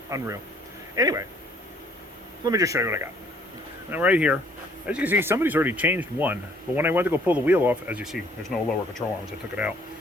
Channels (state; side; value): normal; both; correlation 0.60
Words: Unreal. Anyway, let me just show you what I got. Now right here, as you can see, somebody's already changed one. But when I went to go pull the wheel off, as you see, there's no lower control arms. I took it out.